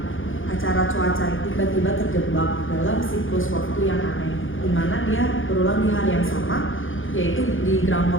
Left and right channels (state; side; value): late; right; 0.58 ms